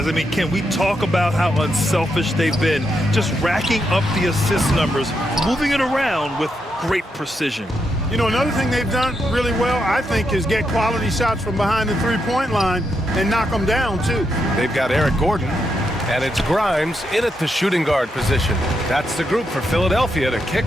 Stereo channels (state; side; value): normal; both; correlation 0.82